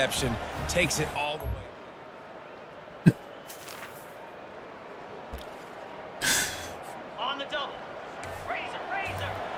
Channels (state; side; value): identical; both; correlation 1.00